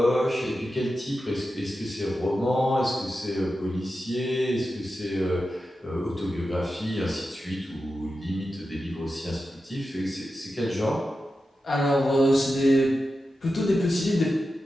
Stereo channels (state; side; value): normal; both; correlation 0.91